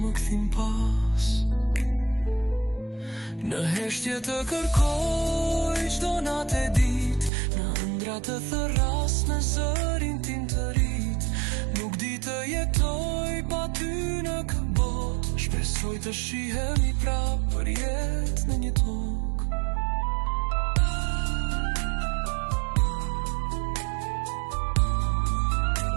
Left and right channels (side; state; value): left; drops out; at 7.3 s